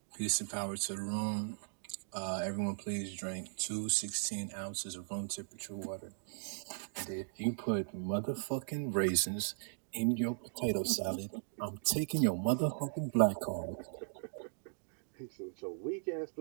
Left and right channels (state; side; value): silent; left; digital silence